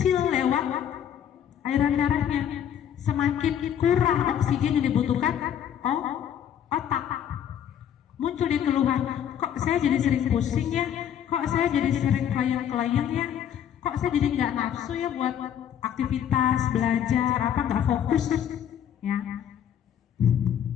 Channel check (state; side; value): quieter; right; 9.5 dB